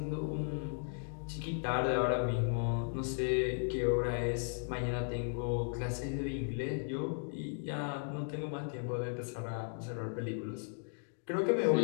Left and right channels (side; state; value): right; silent; digital silence